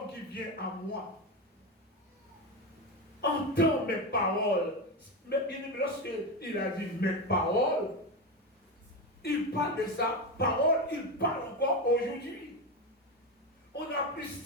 qui vient à moi. entends mes paroles. Mais bien aimé, lorsqu'il a dit mes paroles, il parle de sa parole, il parle encore aujourd'hui. On a plus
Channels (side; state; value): both; normal; correlation 0.16